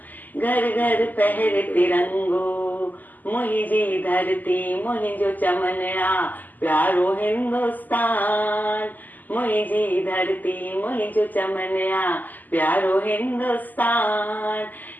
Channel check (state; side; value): late; right; 0.084 ms